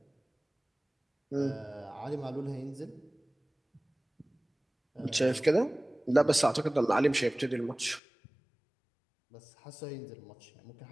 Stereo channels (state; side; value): drops out; right; at 8.0 s